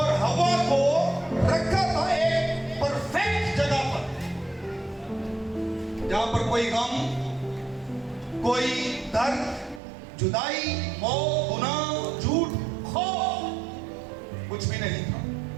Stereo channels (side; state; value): left; drops out; at 9.8 s